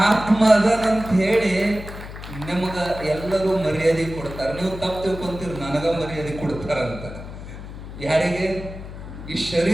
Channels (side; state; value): left; noise; hum, 12 dB below the sound